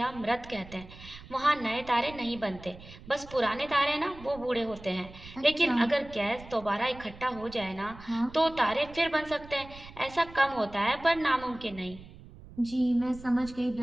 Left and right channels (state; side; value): noise; right; rumble, 17 dB below the sound